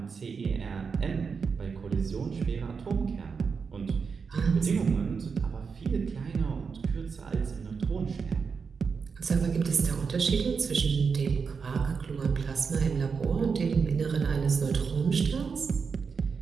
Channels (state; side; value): quieter; left; 5.6 dB